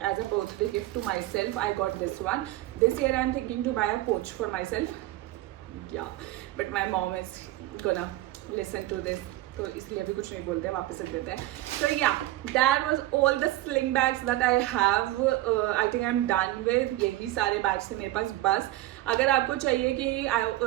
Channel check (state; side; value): quieter; left; 16.2 dB